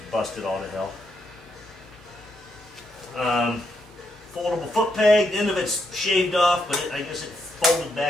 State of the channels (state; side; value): normal; both; correlation 0.79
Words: busted all to hell. Foldable foot peg, the end of it's shaved off, but I guess it folded